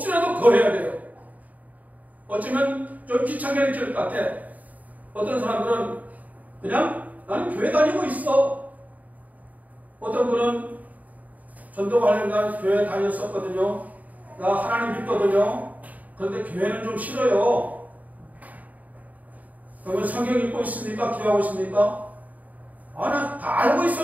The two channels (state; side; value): late; left; 0.075 ms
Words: 거해야 돼요. 어쩌면 좀 귀찮게 느낄 것 같아. 어떤 사람들은 그냥 나는 교회 다니고 있어. 어떤 분은 전도 관련된 교회 다녔었거든요. 나 하나님 믿거든요. 그런데 교회는 좀 싫어요. 그러면 성경 읽고 있습니까? 기도하고 있습니까? 아, 나 다 알고